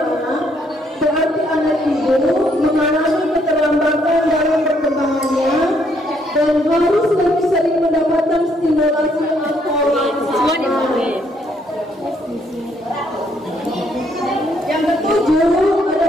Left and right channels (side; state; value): both; normal; correlation 0.70